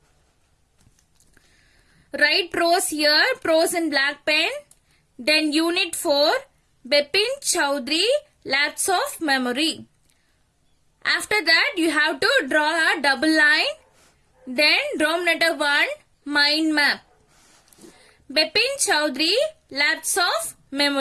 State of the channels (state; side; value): identical; both; correlation 1.00